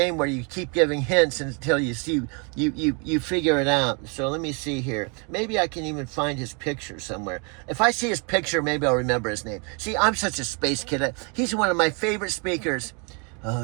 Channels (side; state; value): left; quieter; 34.4 dB